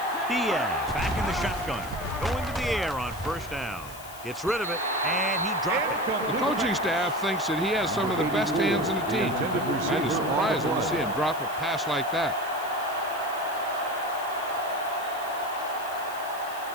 Diaz back in the shotgun, going to the air on first down. Gets rid of it, and he dropped it. The coaching staff thinks that he has some of the best hands in the team. And it's surprising to see him drop a pass like that.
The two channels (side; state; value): left; noise; hiss, 16 dB below the sound